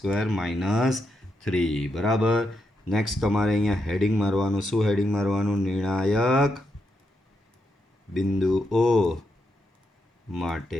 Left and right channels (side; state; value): both; normal; correlation 0.82